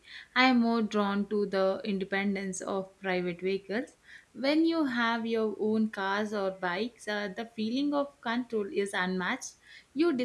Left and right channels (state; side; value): identical; both; correlation 1.00